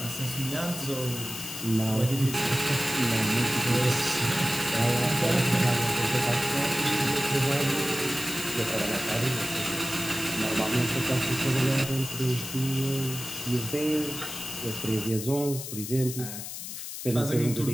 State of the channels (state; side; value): noise; left; hiss, 8 dB below the sound